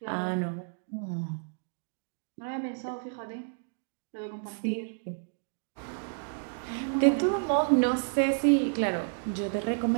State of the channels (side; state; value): left; silent; digital silence